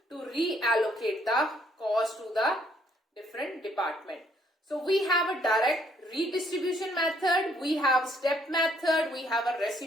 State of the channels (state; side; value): normal; both; correlation 0.67